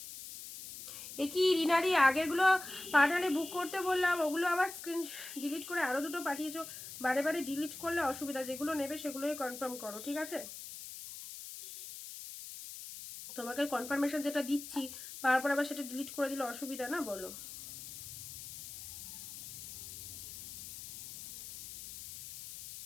এ কি রিনাদি, আগেরগুলো পাঠালে বুক করতে বললাম, ওগুলো আবার স্ক্রিন ডিলিট করে আরো দুটো পাঠিয়েছো। বারে বারে ডিলিট করলে অসুবিধা, যেগুলো নেবে সেগুলোই কনফার্ম করো, ঠিক আছে? তোমাকে কনফার্মেশন যেটা দিচ্ছি তারপর আবার সেটা ডিলিট করে দিলে অসুবিধা না, বলো?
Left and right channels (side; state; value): left; noise; hiss, 11 dB below the sound